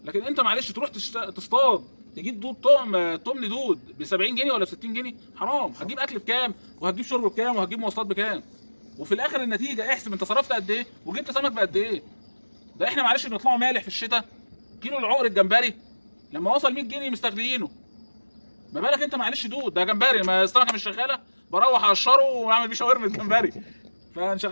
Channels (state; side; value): inverted; both; correlation -1.00